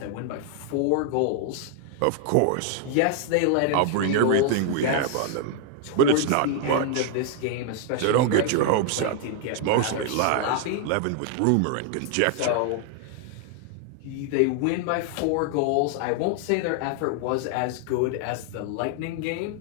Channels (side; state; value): both; different; correlation 0.00